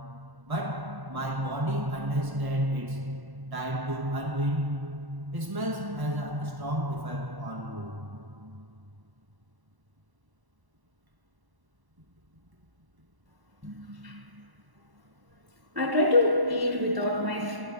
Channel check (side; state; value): left; late; 1.1 ms